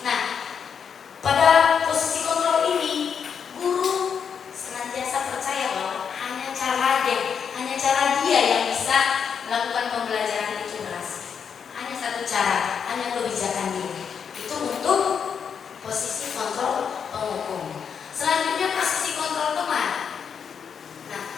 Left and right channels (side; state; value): right; quieter; 7.0 dB